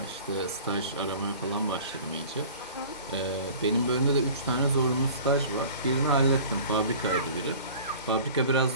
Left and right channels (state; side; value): inverted; both; correlation -0.43